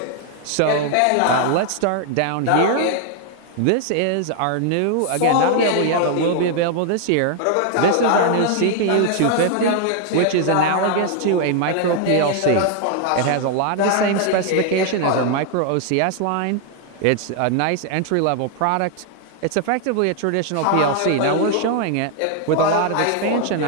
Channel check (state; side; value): different; both; correlation 0.00